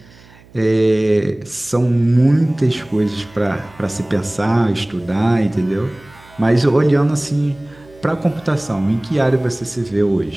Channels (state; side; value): noise; right; hum, 25 dB below the sound